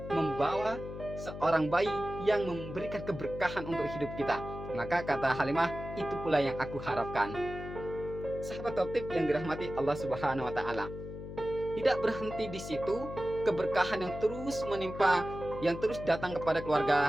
membawa seorang bayi yang memberikan keberkahan untuk hidup kita." Maka kata Halimah, "Itu pula yang aku harapkan." Sahabat Toptip yang dirahmati Allah Subhanahu wa Ta'ala, tidak berhenti di situ. Keberkahan yang terus menimpa, yang terus datang kepada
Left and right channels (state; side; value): noise; left; hum, 10 dB below the sound